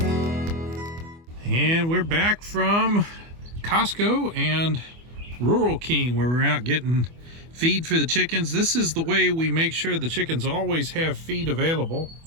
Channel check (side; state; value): left; late; 24 ms